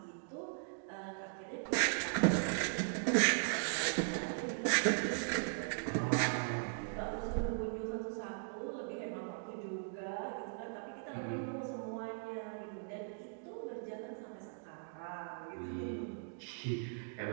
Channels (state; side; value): silent; left; digital silence